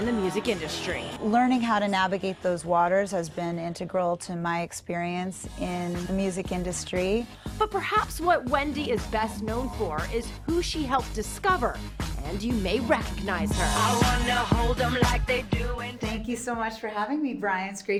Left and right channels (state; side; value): identical; both; correlation 1.00